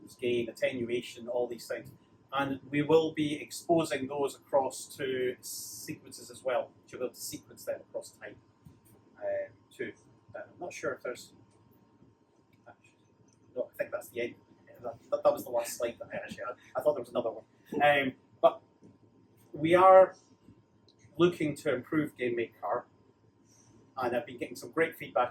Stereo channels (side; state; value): both; identical; correlation 1.00